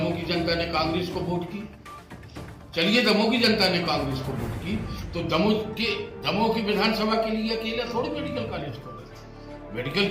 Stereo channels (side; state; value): both; identical; correlation 1.00